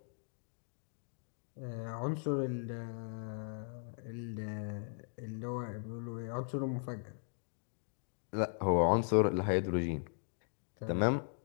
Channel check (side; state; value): right; silent; digital silence